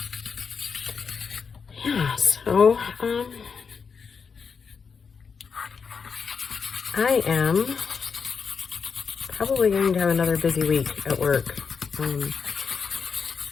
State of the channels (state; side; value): quieter; right; 5.8 dB